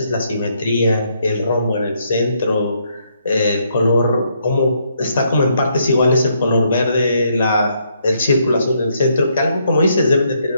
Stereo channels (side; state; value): both; inverted; correlation -0.74